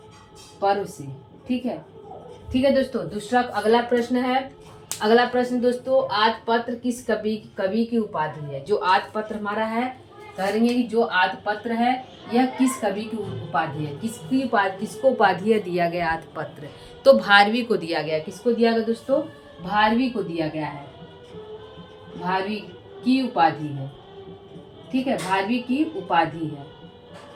पर्व से। ठीक है दोस्तों, दूसरा अगला प्रश्न दोस्तों, आदपत्र किस कवि की उपाधि है। जो आदपत्र हमारा है, कहेंगे कि जो आदपत्र है यह किस कवि की उपाधि है, किसको उपाधि दिया गया आदपत्र, तो भारवी को दिया गया। किसको दिया गया दोस्तों, भारवी को दिया गया है, भारवी की उपाधि है। ठीक है, भारवी की उपाधि है।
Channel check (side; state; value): both; identical; correlation 1.00